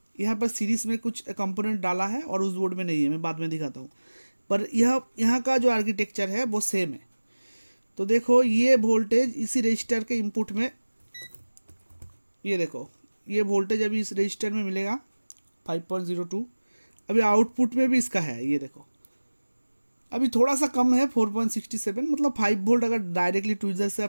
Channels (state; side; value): inverted; both; correlation -1.00